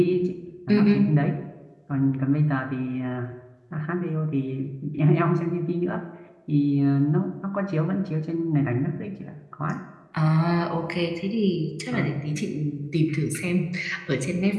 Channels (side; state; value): both; identical; correlation 1.00